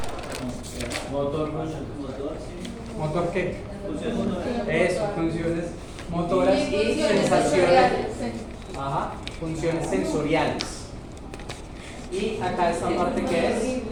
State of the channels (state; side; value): identical; both; correlation 1.00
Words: ¿Motor qué? Eso, funciones motoras y sensaciones. Ajá, funciones sensoriales. Y acá esta parte que es.